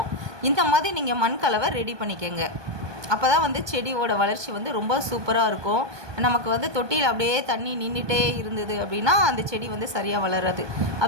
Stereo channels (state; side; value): late; left; 1.2 ms